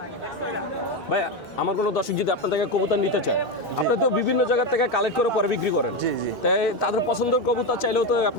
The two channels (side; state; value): both; normal; correlation 0.12